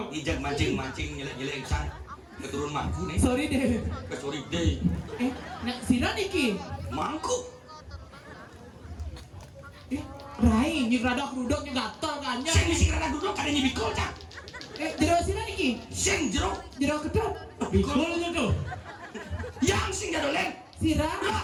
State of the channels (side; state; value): both; identical; correlation 1.00